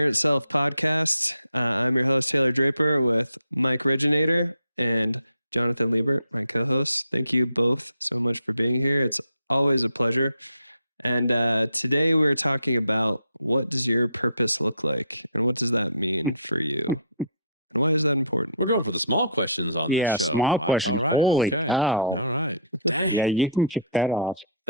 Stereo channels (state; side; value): inverted; both; correlation -0.58